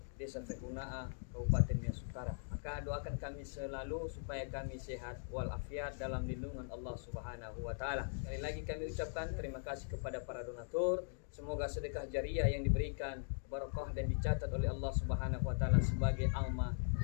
Desa Fehunaa, Kabupaten Nias Utara. Maka doakan kami selalu supaya kami sehat walafiat dalam lindungan Allah Subhanahu wa taala. Sekali lagi kami ucapkan terima kasih kepada para donatur. Semoga sedekah jariah yang diberikan barakah dan dicatat oleh Allah Subhanahu wa taala sebagai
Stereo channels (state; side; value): silent; right; digital silence